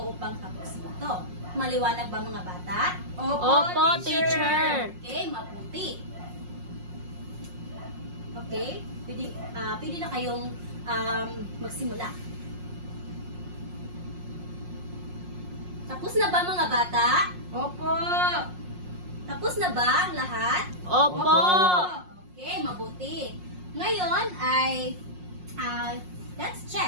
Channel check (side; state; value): left; late; 5.5 ms